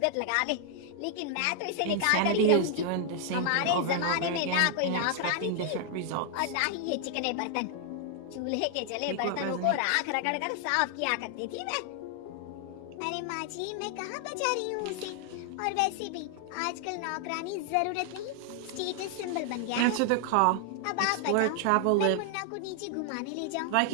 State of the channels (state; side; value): different; both; correlation 0.00